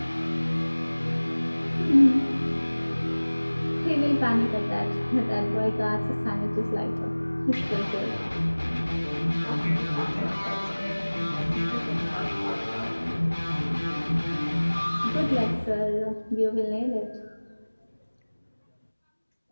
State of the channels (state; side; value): inverted; both; correlation -1.00